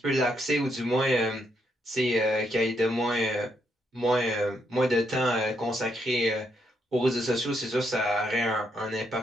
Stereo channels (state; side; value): normal; both; correlation 0.77